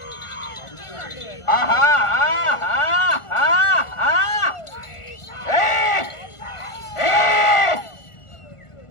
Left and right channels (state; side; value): late; right; 1.5 ms